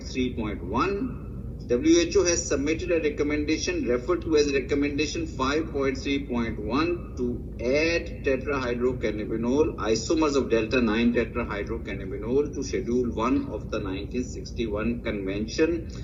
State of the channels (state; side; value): identical; both; correlation 1.00